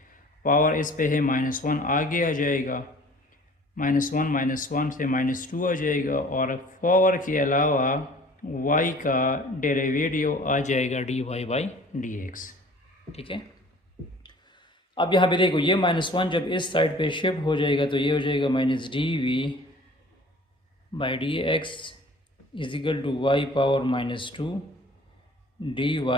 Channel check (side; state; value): both; normal; correlation 0.49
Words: पावर इस पे है -1, आगे आ जाएगा -1 से -2 आ जाएगा, और पावर के अलावा y का डेरिवेटिव आ जाएगा dy/dx। ठीक है, अब यहाँ पे देखो ये -1 जब इस साइड पे शिफ्ट हो जाएगा तो ये हो जाएगा -dv by D x is equal to y power -2 D